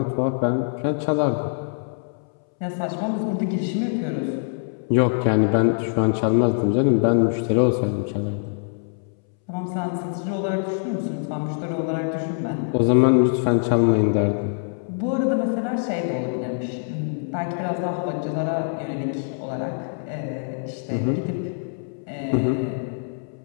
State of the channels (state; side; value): silent; right; 63 dB below the other